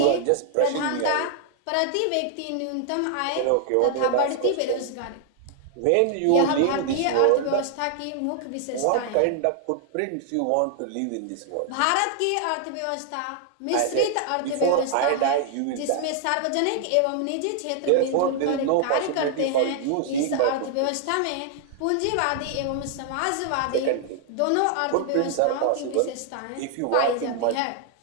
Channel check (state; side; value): different; both; correlation 0.00